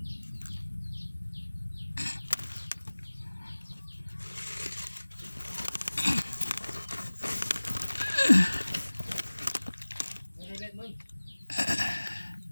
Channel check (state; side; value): inverted; both; correlation -1.00